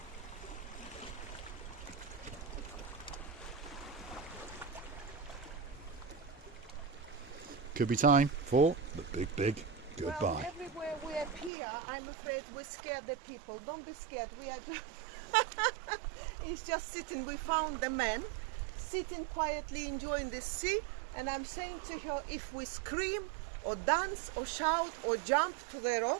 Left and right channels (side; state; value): left; drops out; at 11.5 s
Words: Could be time for the big goodbye. Well, everywhere we appear, I'm afraid we scare the people. Don't be scared. We are just he's just sitting. We found the man sitting quietly enjoying the sea, and I'm saying to her, if we scream or dance or shout or jump to the